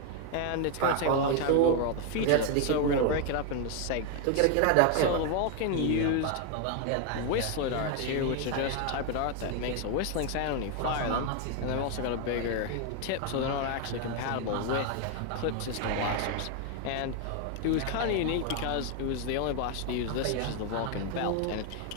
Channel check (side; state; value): both; different; correlation 0.01